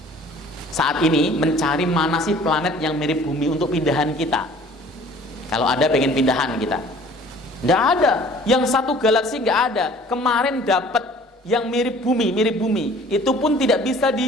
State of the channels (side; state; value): both; normal; correlation 0.51